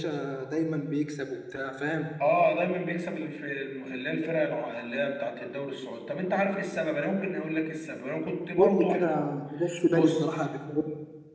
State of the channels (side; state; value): both; identical; correlation 1.00